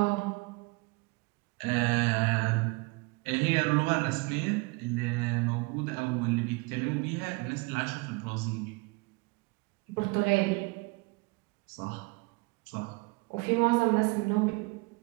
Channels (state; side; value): quieter; left; 27.2 dB